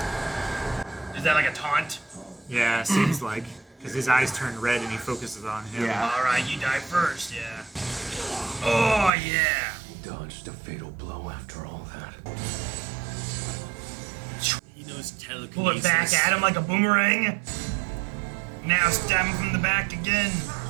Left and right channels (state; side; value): drops out; left; at 9.1 s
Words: Is that like a taunt? Yeah, seems like. Because his eyes turn red and he focuses on him. Yeah. Alright, you die first, yeah. Oh yeah. He dodged a fatal blow after all that. He knows telekinesis. Pull it back at him like a boomerang. Now stab him from the back again.